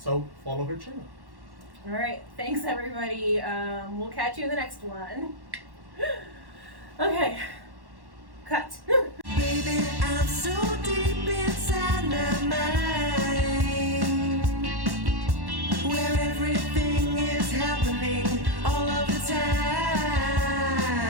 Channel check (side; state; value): left; late; 1.1 ms